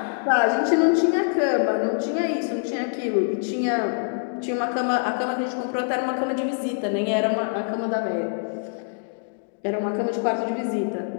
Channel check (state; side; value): silent; right; digital silence